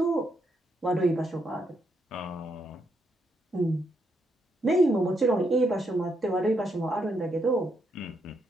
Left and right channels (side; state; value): both; normal; correlation 0.78